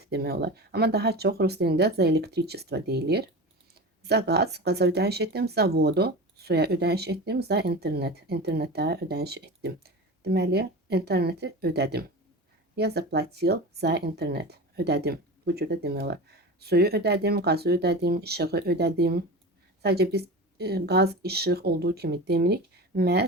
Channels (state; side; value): normal; both; correlation 0.29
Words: demək olar. Amma daha çox rus dilində за электричество deyilir. За gaz, qaza ödəniş etdim. За vodu, suya ödəniş etdim. За internet, internetə ödəniş etdim. Deməli, interneti ödədim. Я заплатил за internet, ödədim. Bu cürdə demək olar. Suyu ödədim, qazı ödədim, işığı ödədim. Sadəcə biz qaz, işıq olduğu kimi demirik.